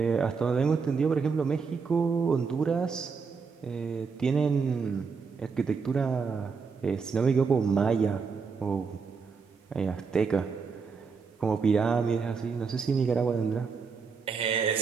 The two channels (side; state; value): left; quieter; 5.3 dB